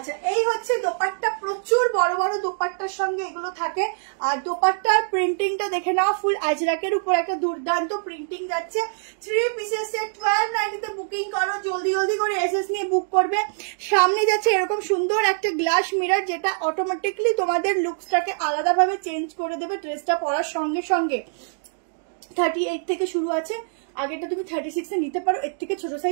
এই হচ্ছে দোপাট্টা, প্রচুর বড় বড় দোপাট্টার সঙ্গে এগুলো থাকে। আর দোপাট্টার প্রিন্টিংটা দেখে নাও, ফুল আজরাকের উপর একটা দুর্দান্ত প্রিন্টিং যাচ্ছে। 3 পিসের সেট 1290 বুকিং করো, জলদি জলদি করে এসএস নিয়ে বুক করবে। সামনে যাচ্ছে এরকম সুন্দর একটা গ্লাস মিরর, যেটা অটোমেটিকলি তোমাদের লুকসটাকে আলাদাভাবে চেঞ্জ করে দেবে ড্রেসটা পরার সঙ্গে সঙ্গে। 38 থেকে শুরু আছে, আগেটা তুমি 36 এ নিতে পারো, এর থেকে ছোট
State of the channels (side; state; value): left; silent; digital silence